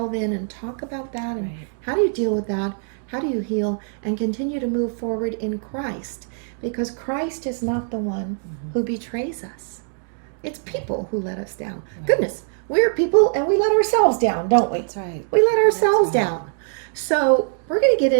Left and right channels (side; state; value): left; silent; digital silence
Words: in and talk about that. And how do you deal with that? How do you heal and continue to move forward in Christ? Because Christ is not the one who betrays us. It's people who let us down. Goodness, we're people and we let ourselves down, don't we? That's right. We let ourselves down. So we're going to get